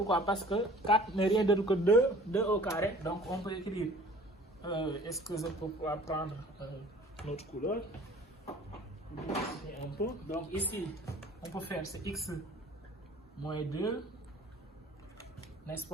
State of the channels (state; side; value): normal; both; correlation 0.49